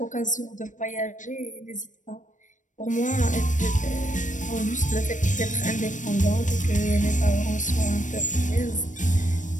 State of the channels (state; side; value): late; right; 0.37 ms